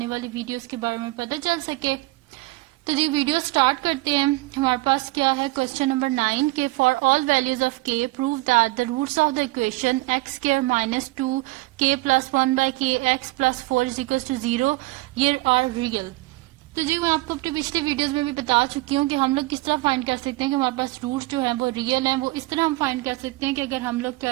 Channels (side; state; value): left; quieter; 21.2 dB